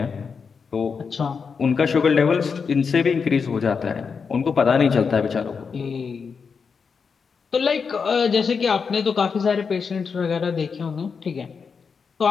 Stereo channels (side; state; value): right; quieter; 5.7 dB